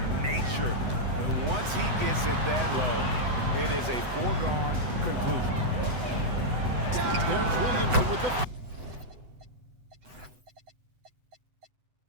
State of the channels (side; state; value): left; late; 8.0 ms